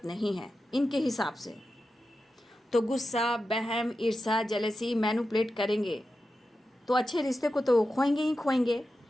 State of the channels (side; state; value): both; normal; correlation 0.91